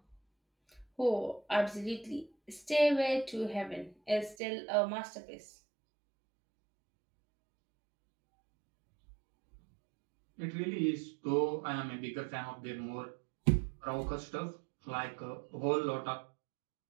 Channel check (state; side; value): drops out; left; at 4.4 s